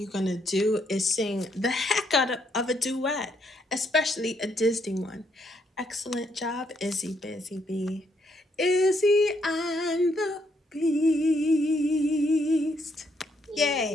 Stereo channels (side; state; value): both; normal; correlation 0.73